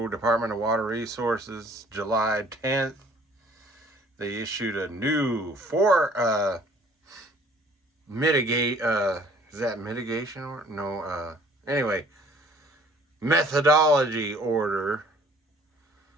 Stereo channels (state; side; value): normal; both; correlation 0.55